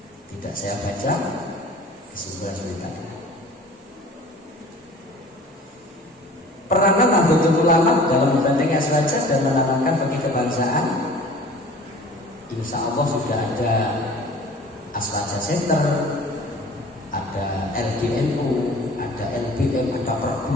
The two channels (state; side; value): normal; both; correlation 0.45